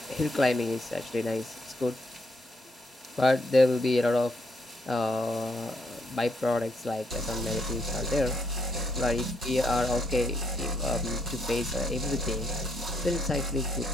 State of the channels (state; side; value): normal; both; correlation 0.74